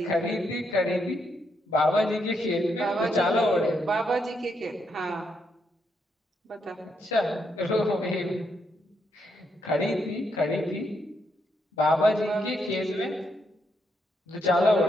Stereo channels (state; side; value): normal; both; correlation 0.78